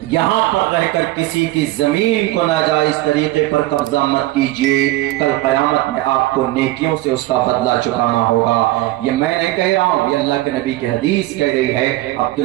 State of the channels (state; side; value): quieter; left; 17.2 dB